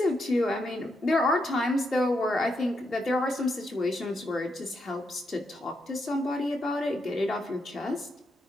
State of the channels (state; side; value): normal; both; correlation 0.81